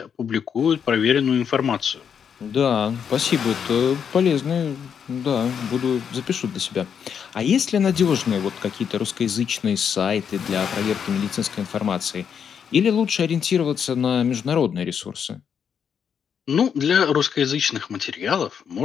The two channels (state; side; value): quieter; right; 7.5 dB